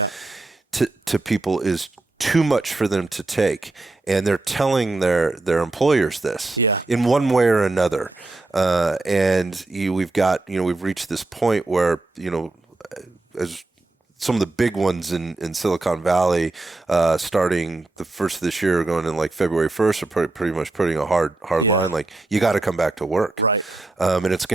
to people is too much for them to take. And they're telling their employers this in one way or another. We've reached this point where, as some of the big ones in Silicon Valley, starting the first of this year, going in like February 1st, are pretty much putting a hard line. Like, you got to come back to work. Right. And it's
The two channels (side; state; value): left; quieter; 3.1 dB